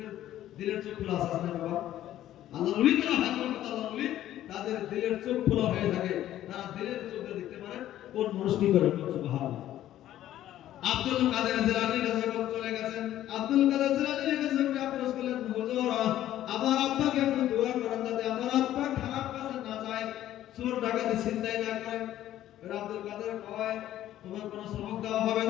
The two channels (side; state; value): right; quieter; 12.8 dB